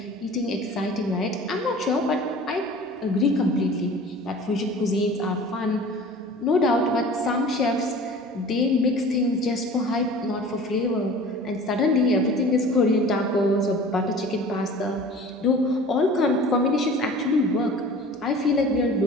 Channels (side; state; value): both; normal; correlation 0.42